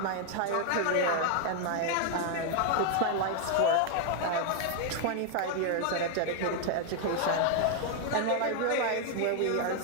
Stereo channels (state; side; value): different; both; correlation 0.00